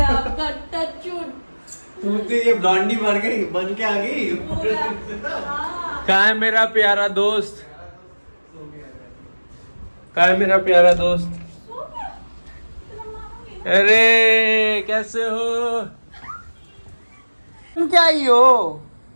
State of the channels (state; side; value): inverted; both; correlation -1.00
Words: आपका, टचवुड। तुम तो ये ब्लॉन्डी बन के आ गई। हाँ। कहाँ है मेरा प्यारा दोस्त? कहाँ है मेरा प्यारा दोस्त? सो गया? तेरा मामा गया? अरे कैसे हो? तुम क्या ही हो?